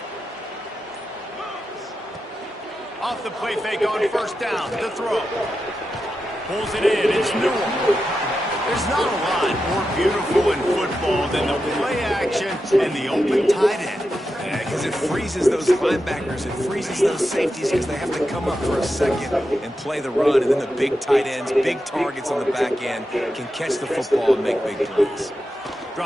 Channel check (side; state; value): both; normal; correlation 0.89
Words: Off the play fake on first down. The throw. Pulls it in. It's Newell. There's not a lot more beautiful in football than the play action and the open tight end. Yeah, because it freezes those linebackers. It freezes those safeties because they have to come up for a second and play the run. And then the big tight ends, big targets on the back end can catch the football and make big plays.